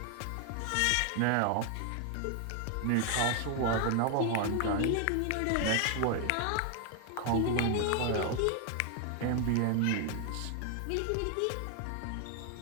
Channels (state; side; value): different; both; correlation 0.00